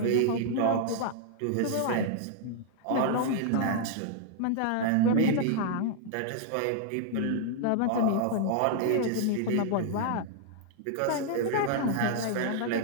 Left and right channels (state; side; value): different; both; correlation -0.01